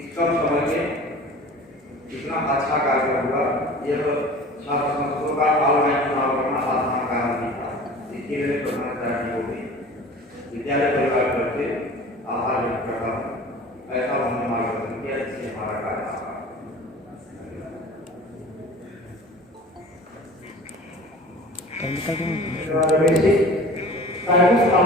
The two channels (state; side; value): normal; both; correlation 0.42